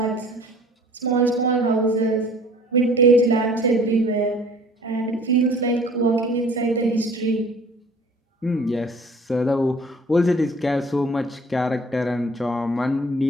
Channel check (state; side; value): normal; both; correlation 0.50